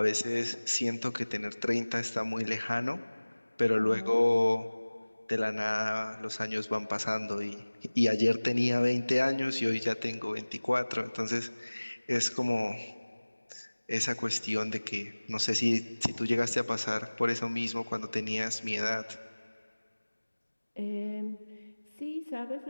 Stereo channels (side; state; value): both; inverted; correlation -1.00